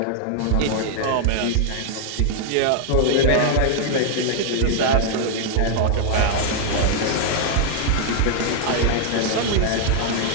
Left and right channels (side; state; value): both; different; correlation 0.00